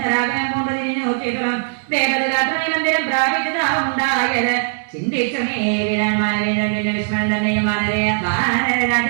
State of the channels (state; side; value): silent; left; digital silence